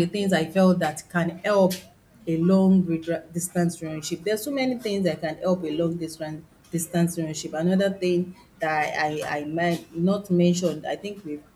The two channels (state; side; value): identical; both; correlation 1.00